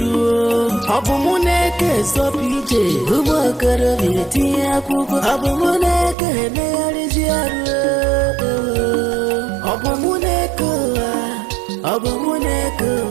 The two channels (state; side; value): drops out; left; at 6.2 s